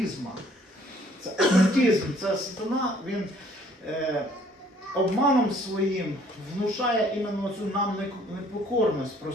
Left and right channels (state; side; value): normal; both; correlation 0.60